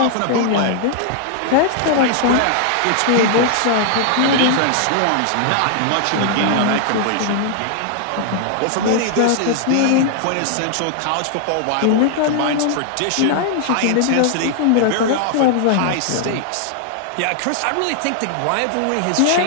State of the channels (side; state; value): both; different; correlation -0.01